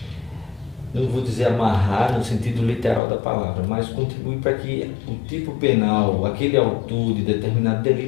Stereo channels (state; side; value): drops out; right; at 3.0 s